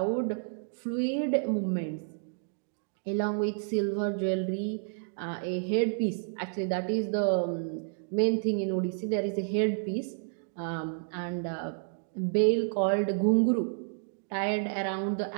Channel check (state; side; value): silent; left; digital silence